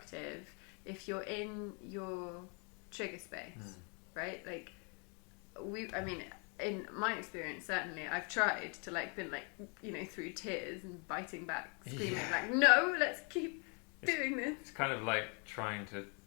if you're in your trigger space, right? Like in my experience, certainly, I've tried to been through tears and biting back, screaming like, no, let's keep doing this. It's kind of like trying to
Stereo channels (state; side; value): quieter; right; 36.2 dB